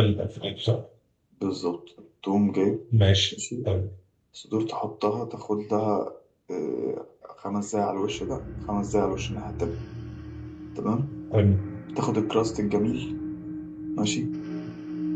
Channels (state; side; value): identical; both; correlation 1.00